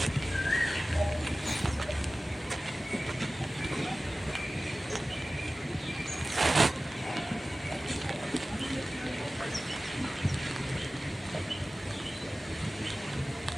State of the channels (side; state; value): both; normal; correlation 0.97